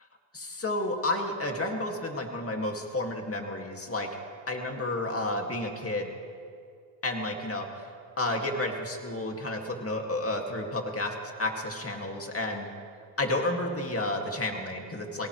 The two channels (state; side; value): normal; both; correlation -0.01